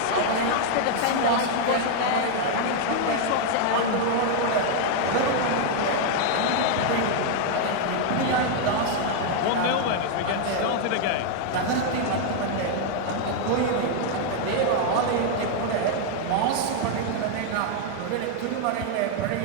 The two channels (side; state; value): both; different; correlation 0.00